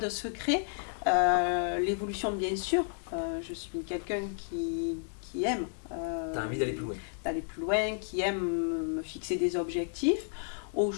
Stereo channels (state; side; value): silent; right; digital silence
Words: secret. L'évolution, bien sûr, je suis quelqu'un qui aime T'as envie d'aller plus loin? d'aller plus loin, qui aime me fixer des objectifs.